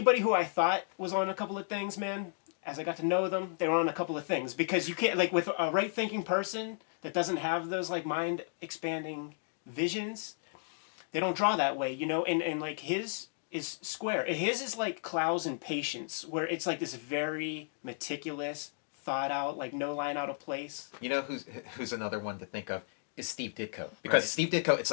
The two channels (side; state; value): right; silent; digital silence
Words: who I thought was on a couple of things, man, as I got to know them, they were on a couple of things, because you can't, like, with a right thinking person that doesn't have those like mind expanding visions, they don't draw that way, you know, and like his is square. His is like Clowes and Patience, where it's like this very meticulous, thought out, like no line out of place. You know who's another one to think of is Steve Ditko, because Steve Ditko, it's